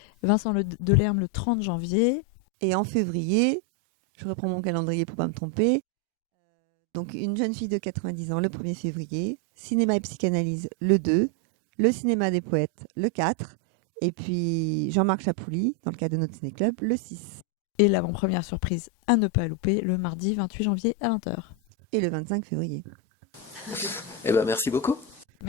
Vincent Delerme le 30 janvier. Et en février, je reprends mon calendrier pour ne pas me tromper. Donc, Une jeune fille de 90 ans le 1er février, Cinéma et psychanalyse le 2, le Cinéma des poètes le 4, et puis Jean-Marc Chapouli, dans le cadre de notre ciné-club, le 6. Et l'avant-première surprise à ne pas louper, le mardi 28 janvier à 20h. Et le 25 février. Eh bien, merci beaucoup.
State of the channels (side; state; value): both; normal; correlation 0.05